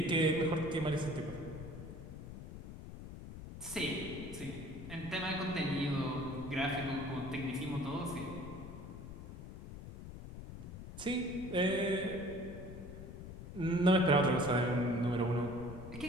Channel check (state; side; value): noise; left; rumble, 11 dB below the sound